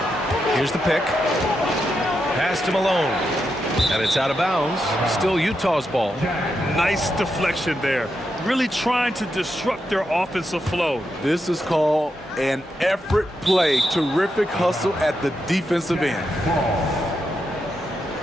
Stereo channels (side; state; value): both; normal; correlation 0.85